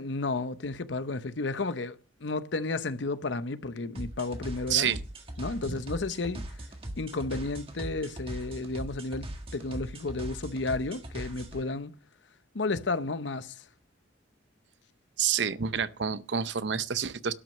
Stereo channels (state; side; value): normal; both; correlation 0.14